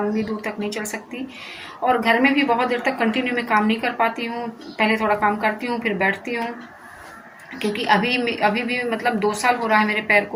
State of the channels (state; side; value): identical; both; correlation 1.00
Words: दूर तक नहीं चल सकती, और घर में भी बहुत देर तक कंटिन्यू में काम नहीं कर पाती हूँ। पहले थोड़ा काम करती हूँ फिर बैठती हूँ, क्योंकि अभी भी मतलब 2 साल हो रहा है मेरे पैर